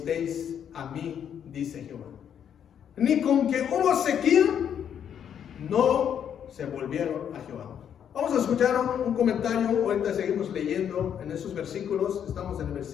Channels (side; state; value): right; quieter; 8.8 dB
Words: a mí, dice Jehová. Ni con que hubo sequía, no se volvieron a Jehová. Vamos a escuchar un comentario. Ahorita seguimos leyendo en esos versículos. Estamos en el